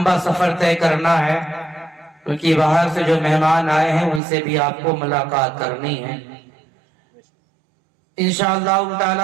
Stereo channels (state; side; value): drops out; left; at 4.2 s